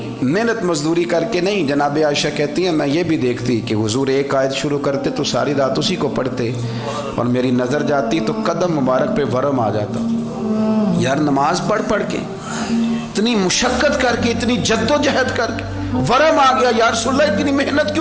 محنت مزدوری کر کے نہیں، جناب عائشہ کہتی ہیں میں یہ بھی دیکھتی کہ حضور ایک آیت شروع کرتے تو ساری رات اسی کو پڑھتے، اور میری نظر جاتی تو قدم مبارک پہ ورم آ جاتا۔ یار نماز پڑھ کے اتنی مشقت کر کے، اتنی جد و جہد کر کے ورم آ گیا، یا رسول اللہ اتنی محنت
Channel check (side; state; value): both; identical; correlation 1.00